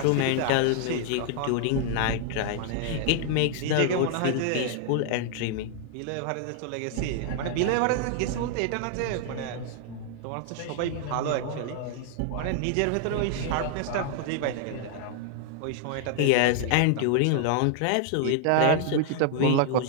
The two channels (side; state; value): both; different; correlation 0.00